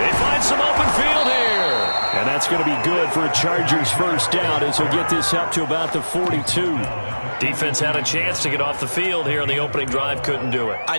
find some open field here. And that's going to be good for a Chargers first down as he'll get this up to about the 42. Defense had a chance to get off the field here on the opening drive, couldn't do it. I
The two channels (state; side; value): inverted; both; correlation -1.00